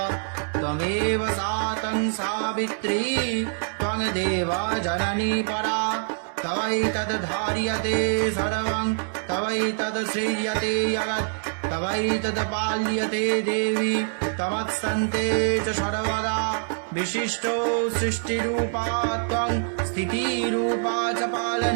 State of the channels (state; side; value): silent; left; 62 dB below the other